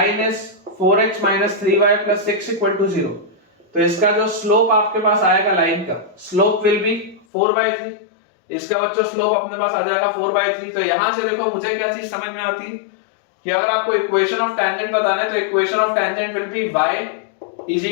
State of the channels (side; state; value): right; drops out; at 7.2 s